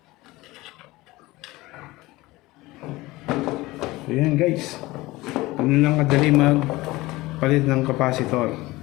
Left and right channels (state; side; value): quieter; right; 19.8 dB